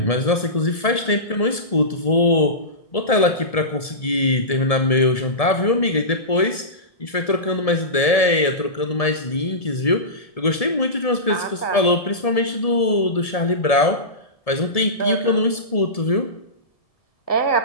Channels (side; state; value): right; late; 1.7 ms